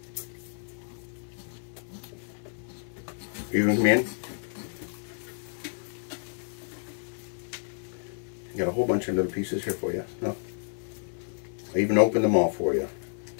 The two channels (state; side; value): silent; right; 58 dB below the other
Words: You going to come in? Got a whole bunch of little pieces here for you. No. I even opened them all for you.